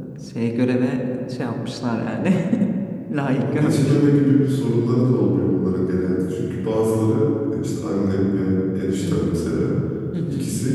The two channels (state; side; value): identical; both; correlation 1.00